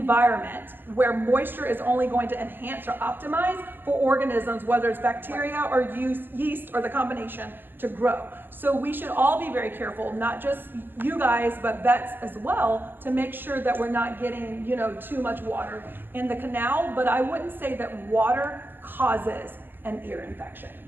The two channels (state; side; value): late; left; 0.097 ms